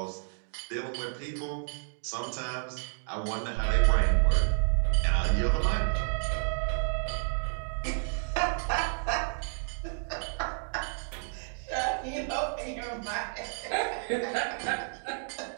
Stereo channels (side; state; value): left; silent; 57 dB below the other